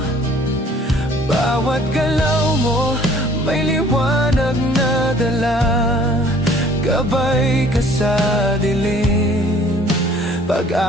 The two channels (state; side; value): normal; both; correlation 0.54